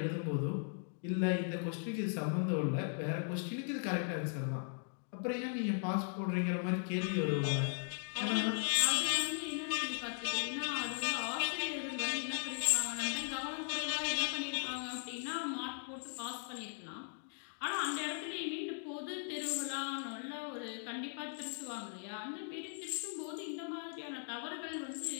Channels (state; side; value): silent; right; 52 dB below the other